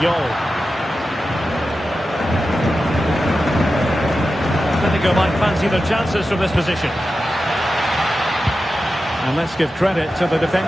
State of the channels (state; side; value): normal; both; correlation 0.92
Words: Atletico might fancy their chances from this position. And let's give credit to the